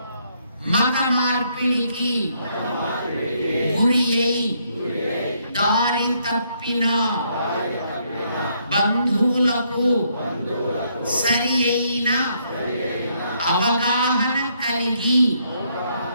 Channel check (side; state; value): both; inverted; correlation -0.72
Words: మత మార్పిడికి గురి అయి దారి తప్పిన బంధువులకు సరి అయిన అవగాహన కలిగి